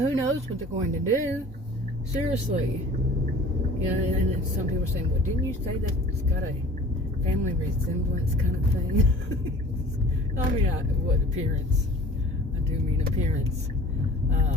knows what they're going to do? Seriously. You know, and some people are saying, well, didn't you say that it's got a family resemblance kind of thing? I mean, what appearance? I do mean appearance.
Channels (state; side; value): normal; both; correlation 0.46